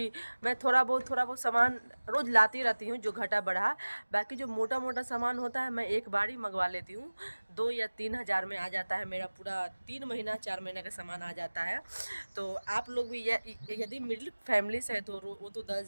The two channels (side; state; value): both; inverted; correlation -1.00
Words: मैं थोड़ा बहुत सामान रोज़ लाती रहती हूँ जो घटा बढ़ा। बाकी जो मोटा मोटा सामान होता है मैं एक बार ही मंगवा लेती हूँ। 2 या 3 हज़ार में आ जाता है मेरा पूरा 3 महीना 4 महीने का सामान आ जाता है। तो आप लोग भी यदि मिडिल फैमिली से है तो वो तो